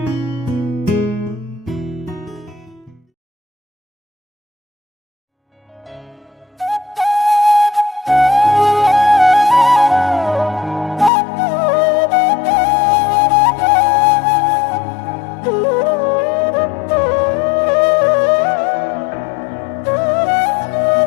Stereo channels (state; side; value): drops out; right; at 11.1 s